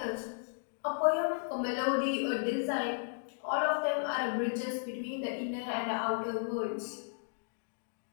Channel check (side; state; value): right; silent; digital silence